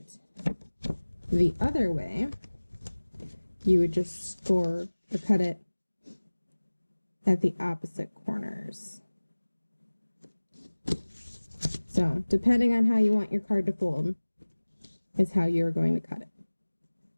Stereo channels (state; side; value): inverted; both; correlation -1.00